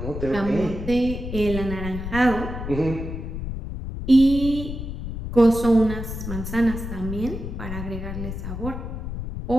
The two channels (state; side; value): noise; left; rumble, 6 dB below the sound